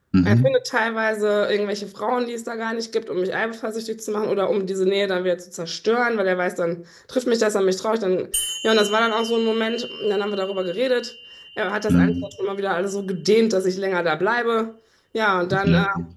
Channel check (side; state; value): both; identical; correlation 1.00